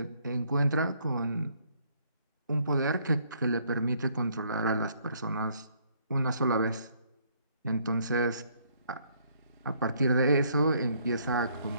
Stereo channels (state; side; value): inverted; both; correlation -0.67